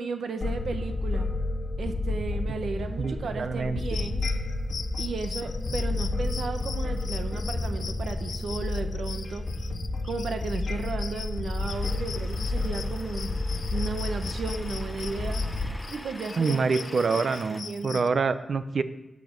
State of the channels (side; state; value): both; normal; correlation 0.85